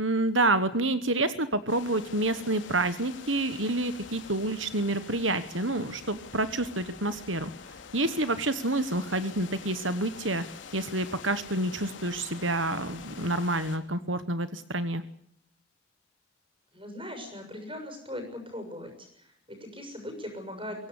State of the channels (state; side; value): normal; both; correlation 0.16